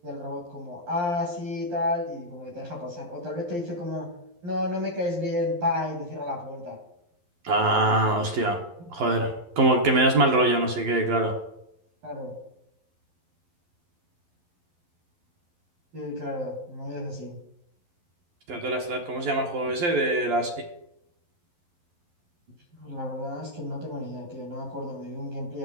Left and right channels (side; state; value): left; late; 11 ms